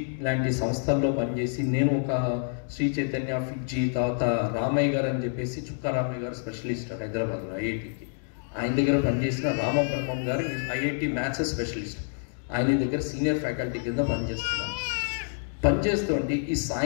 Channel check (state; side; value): silent; right; digital silence